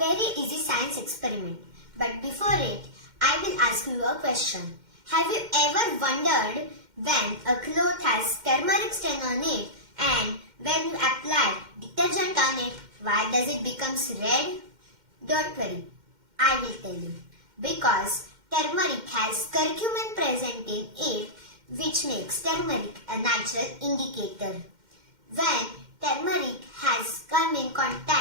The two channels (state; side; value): late; left; 2.1 ms